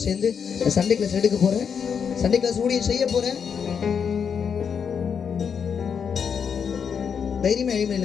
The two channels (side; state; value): right; quieter; 6.9 dB